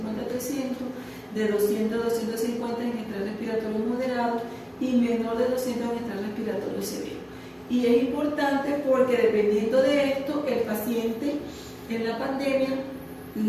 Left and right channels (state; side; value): identical; both; correlation 1.00